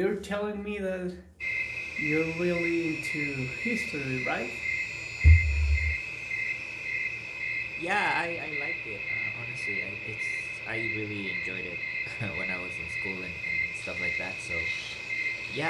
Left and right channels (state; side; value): identical; both; correlation 1.00